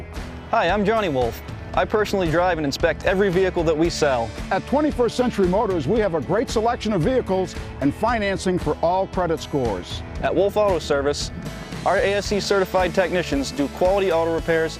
Hi, I'm Johnny Wolf. I personally drive and inspect every vehicle that we sell. At 21st Century Motors, we have a great selection of vehicles and financing for all credit scores. At Wolf Auto Service, our ASC certified technicians do quality auto repairs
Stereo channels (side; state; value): both; identical; correlation 1.00